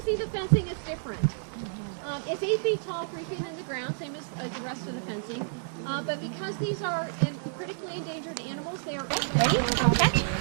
see the fencing is different. It's 8 feet tall, 3 feet in the ground, same as the rest of the fencing. But because these are critically endangered animals, they are ready. Catch.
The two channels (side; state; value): left; silent; 58 dB below the other